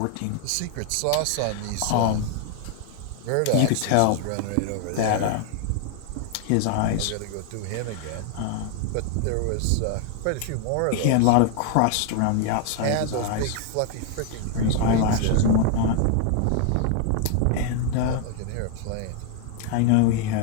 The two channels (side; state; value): both; different; correlation 0.00